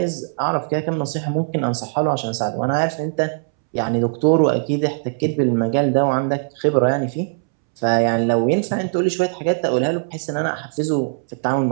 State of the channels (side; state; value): left; silent; 65 dB below the other